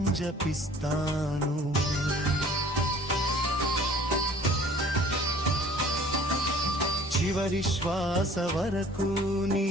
జపిస్తాను చివరి శ్వాస వరకు నీ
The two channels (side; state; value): both; normal; correlation 0.51